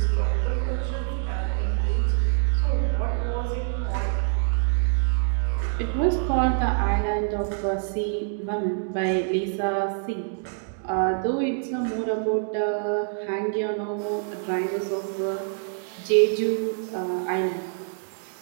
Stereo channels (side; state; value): left; silent; digital silence